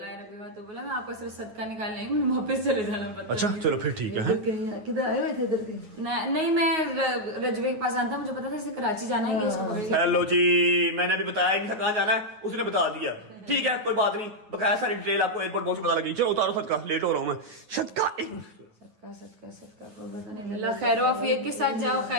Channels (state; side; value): late; left; 9.4 ms